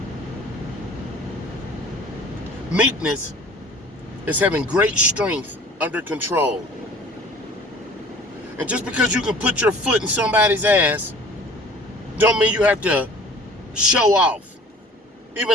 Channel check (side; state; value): both; normal; correlation 0.47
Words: Meekness is having great strength under control. And just because you can put your foot in somebody's ass, don't mean you have to show off.